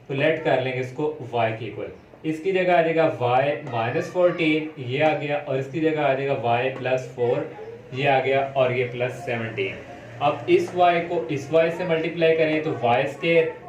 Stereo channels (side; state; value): both; identical; correlation 1.00